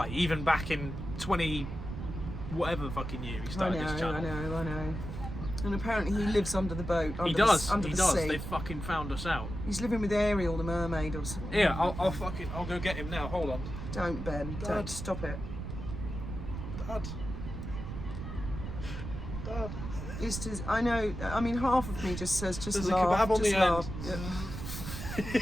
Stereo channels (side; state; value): right; noise; rumble, 7 dB below the sound